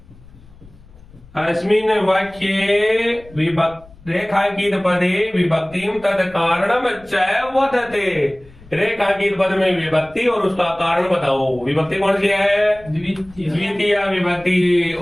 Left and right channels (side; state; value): left; noise; rumble, 23 dB below the sound